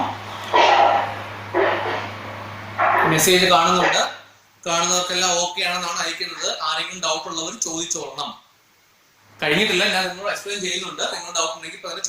മെസ്സേജ് കാണുന്നുണ്ട്, കാണുന്നവർക്കെല്ലാം ഓക്കെ ആണെന്നാണ് അയക്കുന്നത്. ആരെങ്കിലും ഡൗട്ട് ഉള്ളവർ ചോദിച്ചോളണം. കഴിഞ്ഞിട്ടില്ല, ഞാൻ നിങ്ങളോട് എക്സ്പ്ലെയിൻ ചെയ്യുന്നുണ്ട്. നിങ്ങൾ ഡൗട്ട് ഉണ്ടെങ്കിൽ ഇപ്പൊ തന്നെ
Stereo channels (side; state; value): both; identical; correlation 1.00